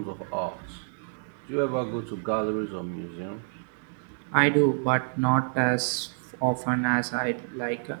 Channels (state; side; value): silent; left; digital silence